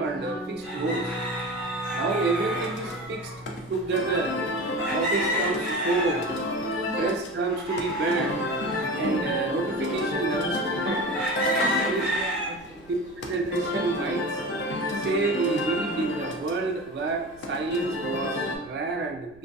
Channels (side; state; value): right; noise; rumble, 25 dB below the sound